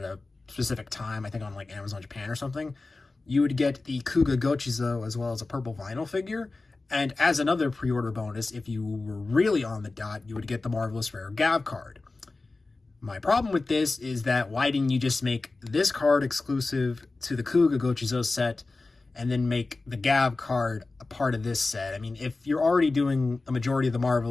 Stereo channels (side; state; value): right; quieter; 3.5 dB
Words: specific time, I think on like Amazon Japan or something, you would get the Kuga Gochizo as well as a purple vinyl figure. And as another pre-order bonus, if you were really on the dot, you would get the Marvelous Rare Gav card. My problem with this is that why didn't you just make this card exclusive to the Kuga Gochizo set and then make the Gav card a part of this set? I mean, if you're already doing a majority of the